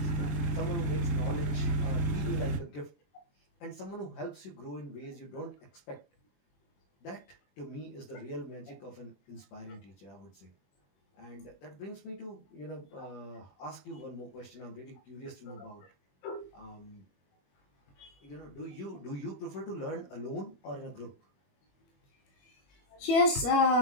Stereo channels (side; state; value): right; late; 21 ms